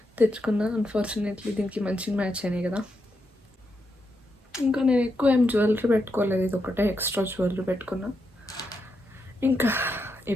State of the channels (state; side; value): normal; both; correlation 0.83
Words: తెచ్చుకున్నా. అన్ఫార్చునేట్లీ దీనికి మంచిగా మ్యాచ్ అయినాయి కదా. ఇంకా నేను ఎక్కువ ఏం జ్యువెలరీ పెట్టుకోలేదు, ఇది ఒకటే ఎక్స్ట్రా జ్యువెలరీ పెట్టుకున్నా. ఇంకా